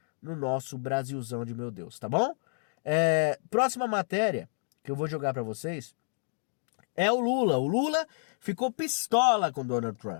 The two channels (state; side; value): silent; right; digital silence